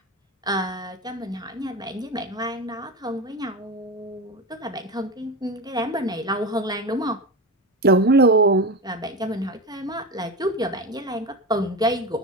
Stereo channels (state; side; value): normal; both; correlation 0.22